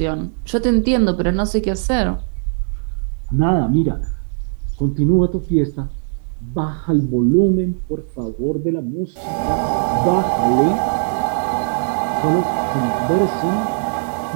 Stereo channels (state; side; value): silent; left; 66 dB below the other